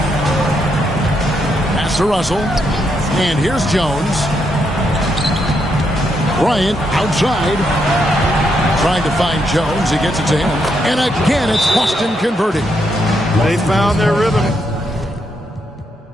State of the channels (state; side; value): normal; both; correlation 0.79